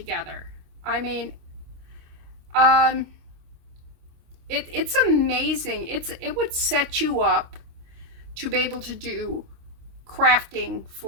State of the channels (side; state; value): left; late; 26 ms